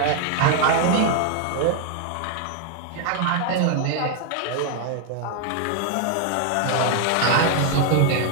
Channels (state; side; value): different; both; correlation 0.00